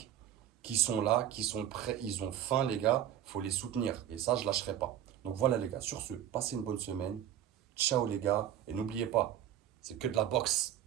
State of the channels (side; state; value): left; quieter; 10.8 dB